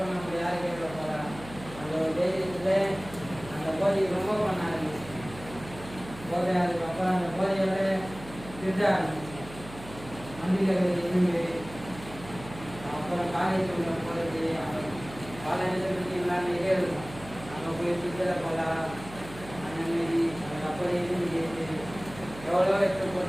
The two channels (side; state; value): right; noise; hum, 15 dB below the sound